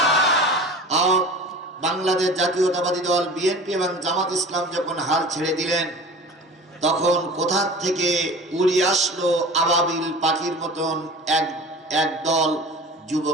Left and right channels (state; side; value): normal; both; correlation 0.38